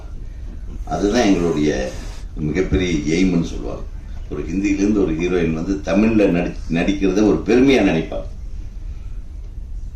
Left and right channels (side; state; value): both; identical; correlation 1.00